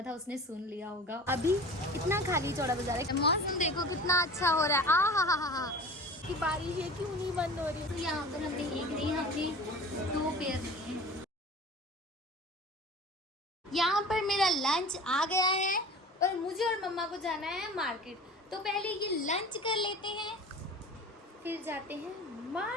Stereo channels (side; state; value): both; normal; correlation 0.38